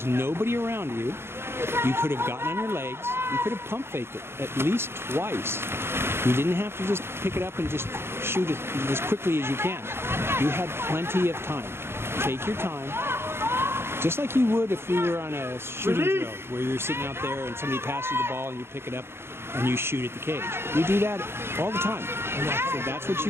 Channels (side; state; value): left; late; 0.12 ms